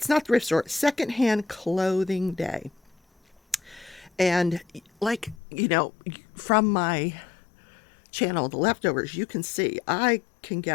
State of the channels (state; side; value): drops out; right; at 5.4 s